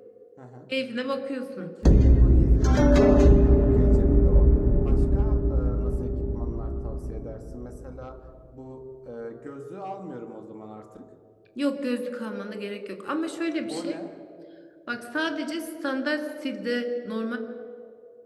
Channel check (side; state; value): both; identical; correlation 1.00